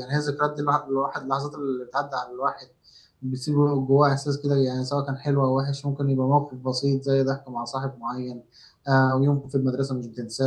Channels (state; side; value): identical; both; correlation 1.00